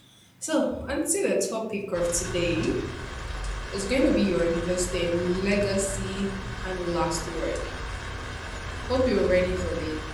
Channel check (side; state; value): both; identical; correlation 1.00